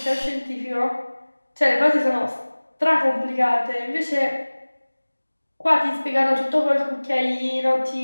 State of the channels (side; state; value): both; inverted; correlation -1.00